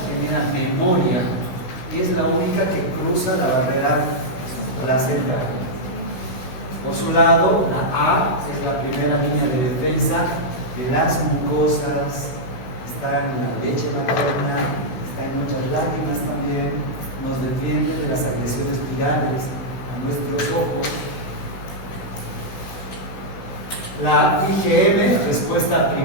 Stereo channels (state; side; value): late; right; 16 ms